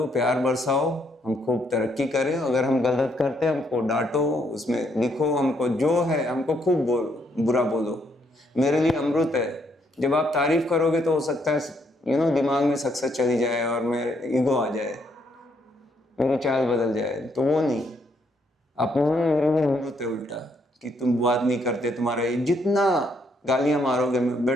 प्यार बरसाओ, हम खूब तरक्की करें। अगर हम गलत करते हैं हमको डांटो, उसमें लिखो, हमको जो है हमको खूब बुरा बोलो, मेरे लिए अमृत है। जब आप तारीफ करोगे तो हो सकता है दिमाग में सक्सेस चली जाए और मेरे ईगो आ जाए, मेरी चाल बदल जाए, तो वो नहीं, अपमान मेरे लिए अमृत है उल्टा, कि तुम बात नहीं करते, तुम्हारा जितना गालियां मारोगे मैं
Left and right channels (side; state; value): both; normal; correlation 0.73